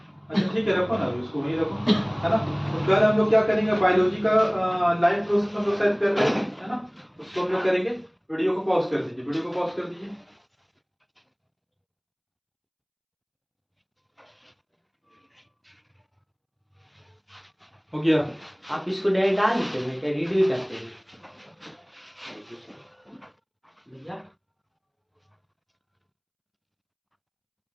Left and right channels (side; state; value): both; identical; correlation 1.00